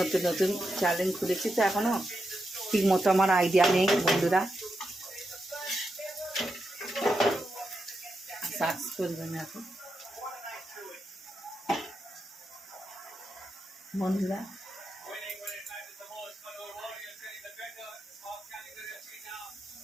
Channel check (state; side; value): normal; both; correlation 0.86